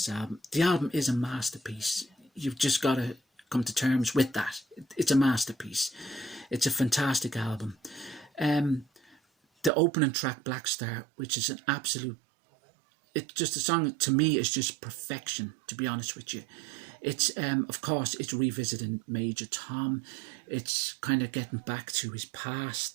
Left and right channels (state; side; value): drops out; left; at 9.7 s